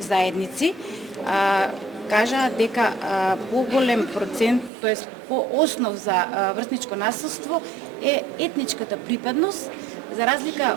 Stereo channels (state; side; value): drops out; left; at 4.7 s